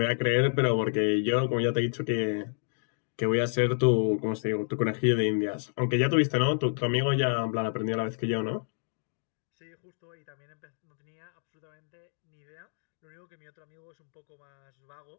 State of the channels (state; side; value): silent; right; digital silence